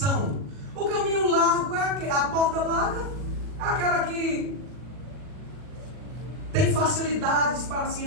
O caminho largo é a porta larga, é aquela que tem facilidades para se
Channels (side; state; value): left; late; 40 ms